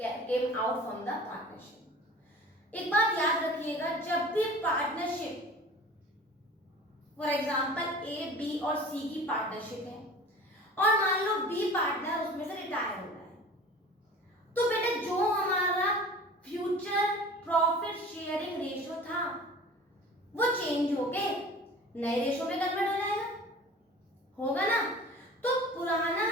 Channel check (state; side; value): normal; both; correlation 0.41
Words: came out from the partnership। एक बात याद रखिएगा, जब भी partnership, for example A, B और C की partnership है और मान लो बी पार्टनर उसमें से रिटायर हो रहा है, तो बेटा जो हमारा फ्यूचर प्रॉफिट शेयरिंग रेशियो था वो चेंज होके नए रेशियो में कन्वर्ट हो जाएगा, होगा ना। तो पुराना